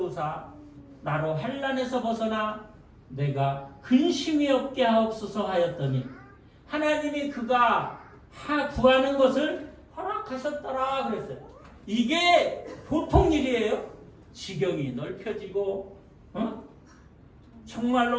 나로 환난에서 벗어나 내가 근심이 없게 하옵소서 하였더니 하나님이 그가 구하는 것을 허락하셨더라 그랬어요. 이게 보통 일이에요. 지경이 넓혀지고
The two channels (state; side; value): identical; both; correlation 1.00